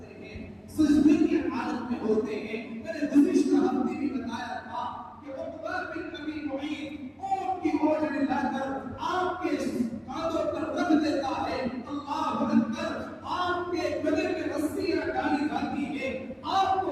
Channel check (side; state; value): both; identical; correlation 1.00